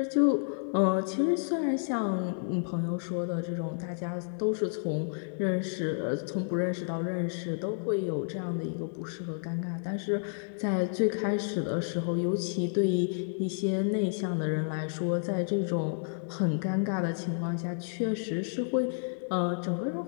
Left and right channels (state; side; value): silent; right; digital silence